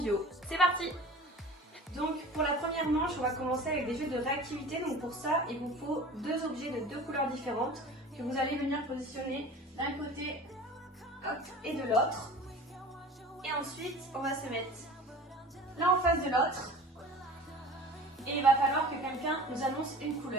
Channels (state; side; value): normal; both; correlation 0.40